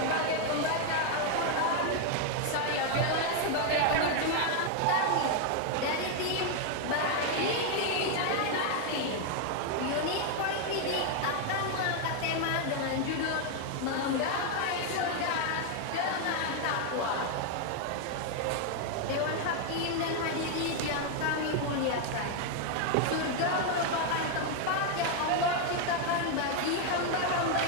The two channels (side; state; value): both; different; correlation 0.01